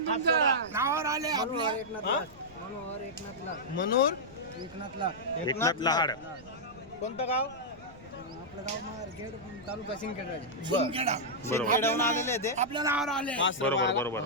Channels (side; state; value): right; noise; rumble, 22 dB below the sound